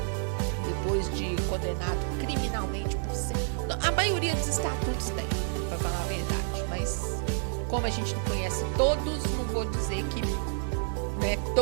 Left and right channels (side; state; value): left; silent; digital silence